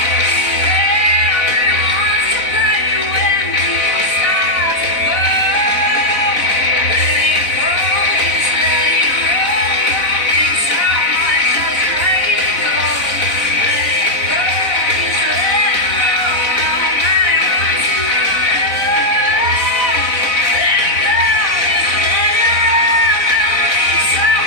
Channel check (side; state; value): right; late; 4.0 ms